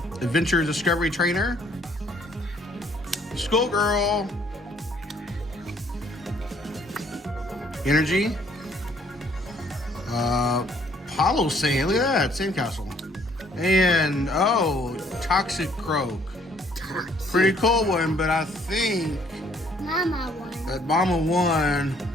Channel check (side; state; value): both; normal; correlation 0.63